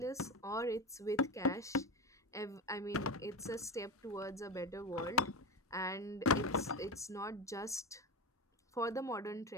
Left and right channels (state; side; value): normal; both; correlation 0.20